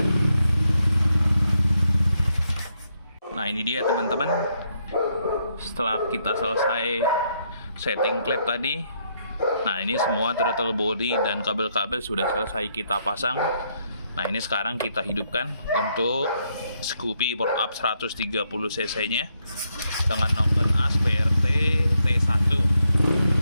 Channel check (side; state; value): both; inverted; correlation -0.77